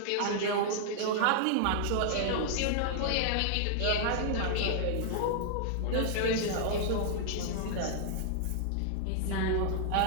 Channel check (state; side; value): different; both; correlation -0.01